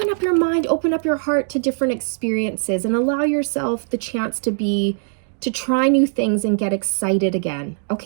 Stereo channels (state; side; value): silent; left; digital silence